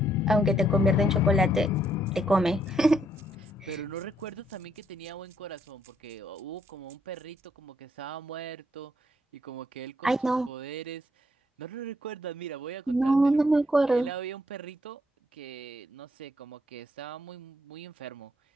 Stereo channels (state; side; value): normal; both; correlation 0.72